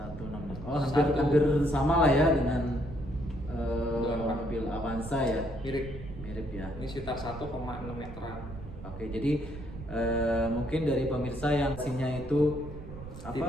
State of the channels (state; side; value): noise; right; rumble, 12 dB below the sound